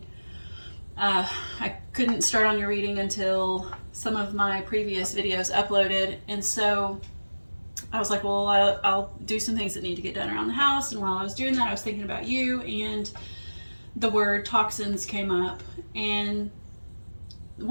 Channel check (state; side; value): inverted; both; correlation -1.00